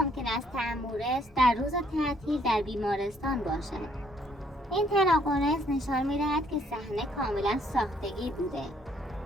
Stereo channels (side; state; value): both; normal; correlation 0.66